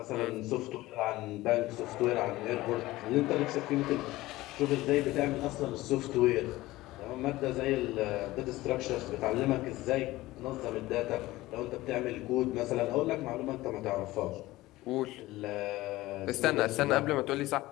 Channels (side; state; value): right; quieter; 18.0 dB